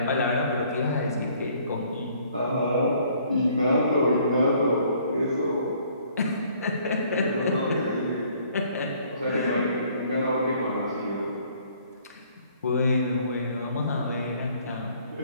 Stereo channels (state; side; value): inverted; both; correlation -0.61